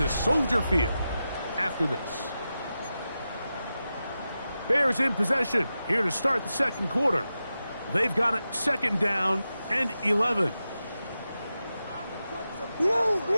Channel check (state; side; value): inverted; both; correlation -0.91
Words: Soldier Field after this. Bears in possession here to start the second quarter. They've got it second down and 11. Whoa.